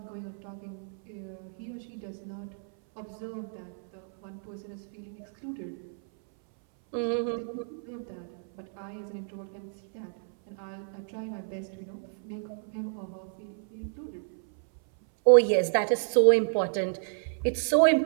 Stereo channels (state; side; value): silent; left; 58 dB below the other